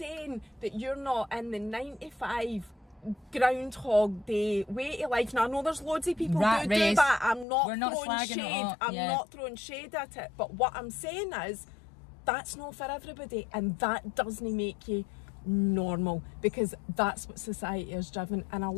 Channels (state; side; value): drops out; right; at 7.5 s